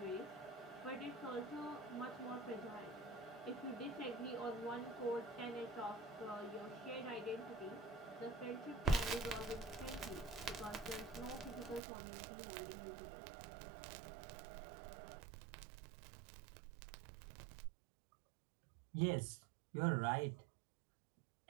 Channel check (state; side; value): drops out; left; at 11.8 s